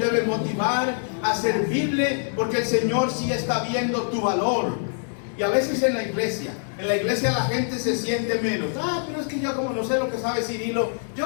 motivar a servirle, porque el Señor sí está viendo tu valor. Y a veces en la iglesia la gente se siente menos. Pero es que yo como no sé lo que sabe Cirilo,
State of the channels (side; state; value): right; silent; 62 dB below the other